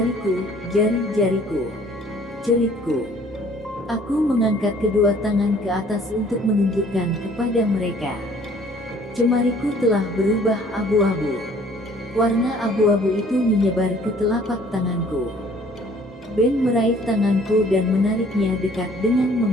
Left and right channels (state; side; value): normal; both; correlation 0.56